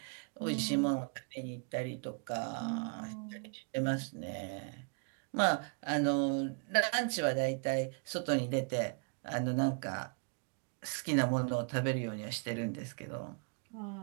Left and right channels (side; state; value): left; quieter; 39.0 dB